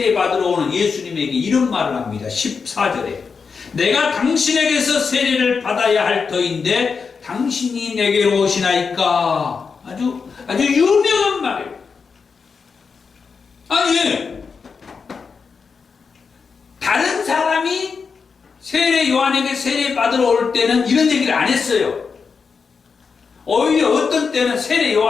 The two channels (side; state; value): right; quieter; 5.4 dB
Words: 받으러 오는 예수님에게 이런 말을 합니다. 14절에 내가 당신에게서 세례를 받아야 할 터인데 당신이 내게로 오시나이까. 아주 유명한 말이에요. 아니, 다른 사람이 세례 요한에게 세례 받으러 올 때는 이런 얘기를 안 했어요. 오히려 어떤 때는 세례